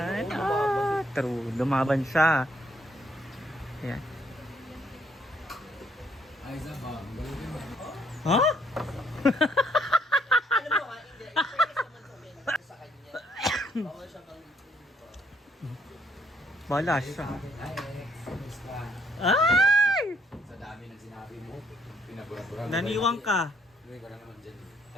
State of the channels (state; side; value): normal; both; correlation 0.69